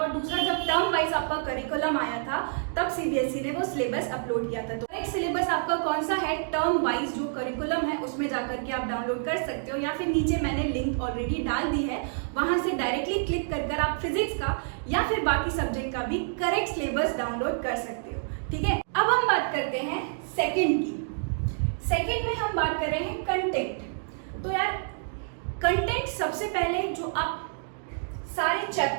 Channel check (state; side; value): silent; left; digital silence